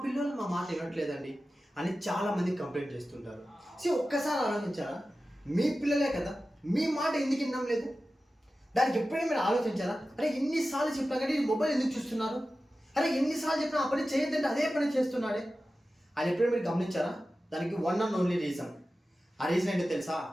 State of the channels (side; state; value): both; normal; correlation 0.94